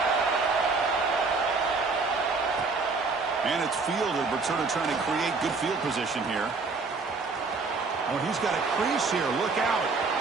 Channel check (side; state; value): left; quieter; 4.2 dB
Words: And it's fielder Berturner trying to create good field position here. Oh, he's got a crease here. Look out.